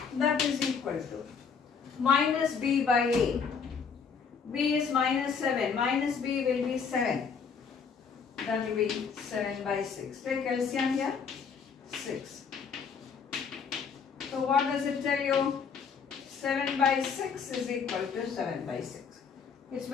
That is equal to minus b by a. B is minus 7. Minus b will be 7. That will be 7 by 6. Take LCM here. 6. So what does it tell you? 7 by 6 is equal to 7 by 6. It's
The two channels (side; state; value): right; quieter; 6.0 dB